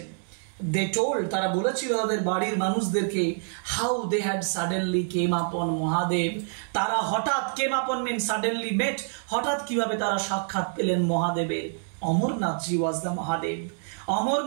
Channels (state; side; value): silent; left; digital silence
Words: দে টোল্ড, তারা বলেছিল তাদের বাড়ির মানুষদেরকে, হাউ দে হ্যাড সাডেনলি কেম আপন মহাদেব, তারা হঠাৎ, কেম আপন মিন সাডেনলি মেট, হঠাৎ কিভাবে তারা সাক্ষাৎ পেলেন মহাদেবের। Amarnathji was the Mahadev,